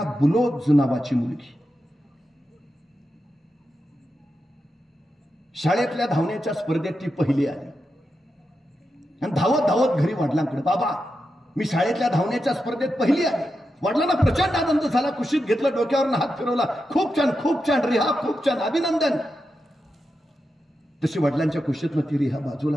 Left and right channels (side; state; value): both; normal; correlation 0.88